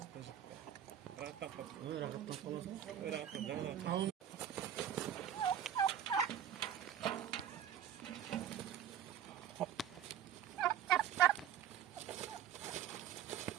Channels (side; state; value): left; quieter; 9.8 dB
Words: Rahattan qoldim. Rahattan qolasan. Rahattan жаңа